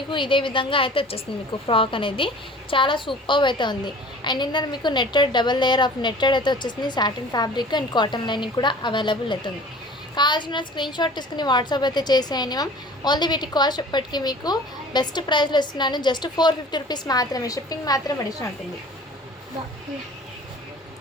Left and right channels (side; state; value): both; normal; correlation 0.45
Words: ఇదే విధంగా అయితే వచ్చేస్తుంది. మీకు ఫ్రాక్ అనేది చాలా సూపర్ అయితే ఉంది. అండ్ ఇందులో మీకు netted double layer of netted అయితే వచ్చేసింది. Satin fabric and cotton lining కూడా అవైలబుల్ అవుతుంది. కావాల్సిన స్క్రీన్ షాట్ తీసుకుని వాట్సాప్ అయితే చేసేయండి మ్యామ్. ఓన్లీ వీటి కాస్ట్ ఇప్పటికీ మీకు బెస్ట్ ప్రైస్లో ఇస్తున్నాను. జస్ట్ 450 రూపీస్ మాత్రమే. షిప్పింగ్ మాత్రం అడిషనల్ ఉంటుంది.